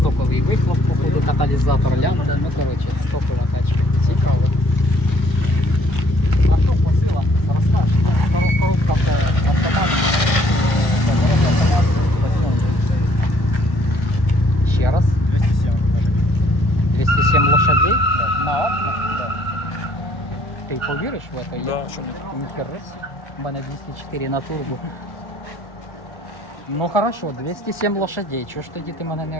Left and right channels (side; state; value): right; late; 1.6 ms